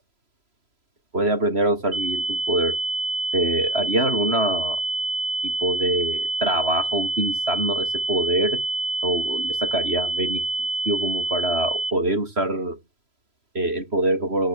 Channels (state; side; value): late; left; 3.0 ms